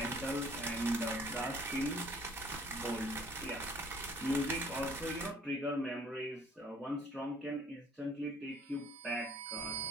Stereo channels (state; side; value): normal; both; correlation 0.57